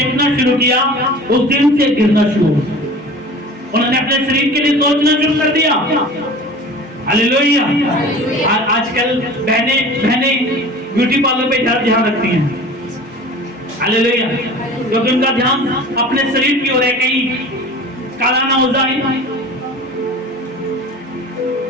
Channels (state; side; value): normal; both; correlation 0.40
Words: शुरू किया उस दिन से गिरना शुरू हुआ। उन्होंने अपने शरीर के लिए सोचना शुरू कर दिया। हालेलुया। आजकल बहने ब्यूटी पार्लर पे ध्यान रखती हैं। हालेलुया। क्योंकि उनका ध्यान अपने शरीर की ओर है, कहीं काला ना हो जाए।